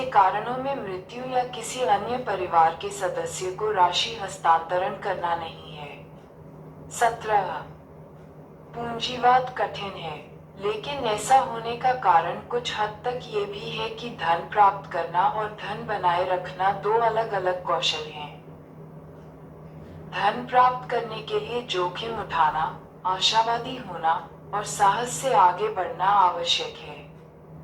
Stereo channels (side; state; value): both; identical; correlation 1.00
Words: कारणों में मृत्यु या किसी अन्य परिवार के सदस्य को राशि हस्तांतरण करना नहीं है। 17 पूंजीवाद कठिन है, लेकिन ऐसा होने का कारण कुछ हद तक ये भी है कि धन प्राप्त करना और धन बनाए रखना 2 अलग अलग कौशल हैं। धन प्राप्त करने के लिए जोखिम उठाना, आशावादी होना और साहस से आगे बढ़ना आवश्यक है।